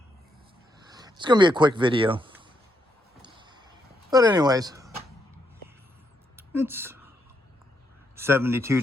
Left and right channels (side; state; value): both; normal; correlation 0.78